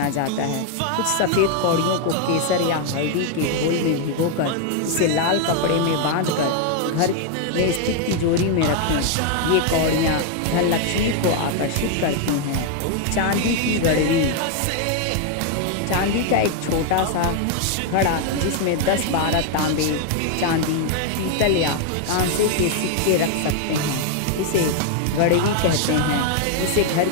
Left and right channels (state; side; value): different; both; correlation 0.00